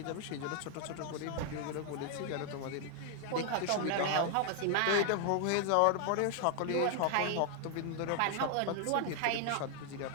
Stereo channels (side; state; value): both; different; correlation 0.00